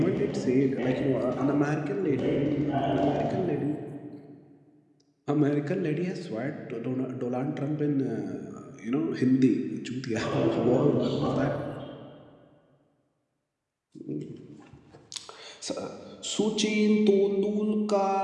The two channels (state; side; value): identical; both; correlation 1.00